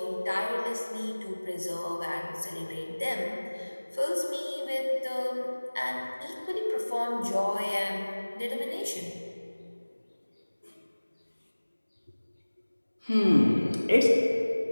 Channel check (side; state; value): both; inverted; correlation -1.00